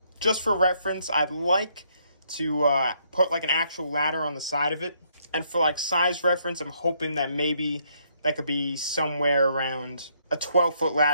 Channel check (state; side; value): inverted; both; correlation -0.71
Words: just for reference, I'd like to put like an actual ladder on the side of it. And for like size reference, I'm hoping that maybe that could be somewhere around a 12-foot